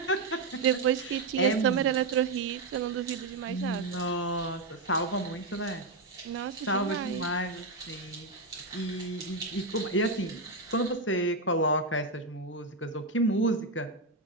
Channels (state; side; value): quieter; left; 3.2 dB